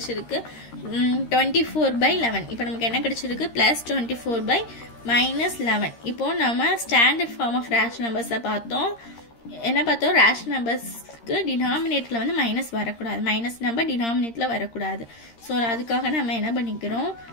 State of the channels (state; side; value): late; right; 13 ms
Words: 24/11. இப்போ நமக்கு என்ன கிடைச்சிருக்கு +24/-11. இப்போ நம்ம ஸ்டாண்டர்ட் ஃபார்ம் ஆஃப் ரேஷனல் நம்பர்ஸை பார்த்தோம். என்ன பார்த்தோம், ரேஷனல் நம்பர்ஸ்க்கு டினாமினேட்டர்ல வந்து மைனஸ் வரக்கூடாது, மைனஸ் நம்பர் டினாமினேட்டர்ல வரக்கூடாது. ஸோ அதுக்காக நம்ம என்ன பண்ணிக்கிறோம்,